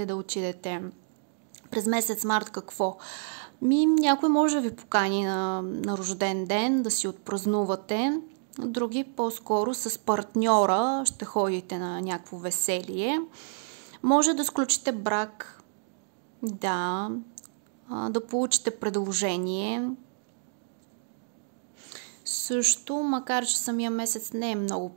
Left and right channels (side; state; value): left; silent; digital silence